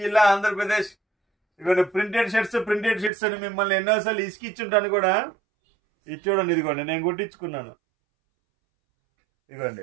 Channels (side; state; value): left; drops out; at 3.1 s